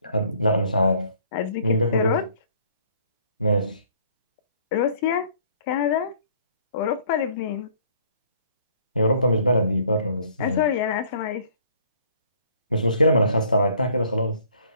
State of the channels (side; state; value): both; inverted; correlation -0.58